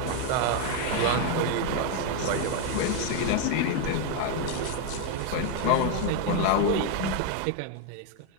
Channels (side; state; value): both; different; correlation 0.01